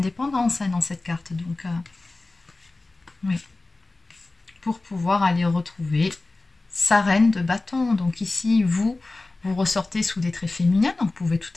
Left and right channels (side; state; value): right; quieter; 3.1 dB